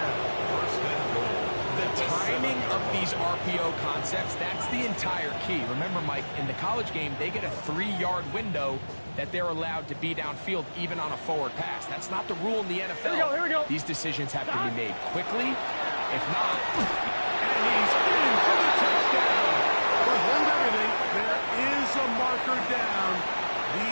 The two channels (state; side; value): inverted; both; correlation -1.00